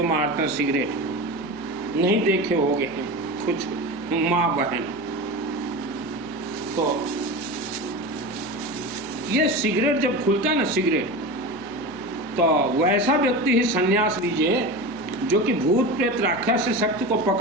मारते हैं सिगरेट, नहीं देखे होंगे कुछ माँ बहन। तो ये सिगरेट जब खुलता है ना सिगरेट, तो वैसा व्यक्ति ही संन्यास लीजिए जो कि भूत प्रेत राक्षस शक्ति को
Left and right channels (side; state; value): left; noise; hum, 24 dB below the sound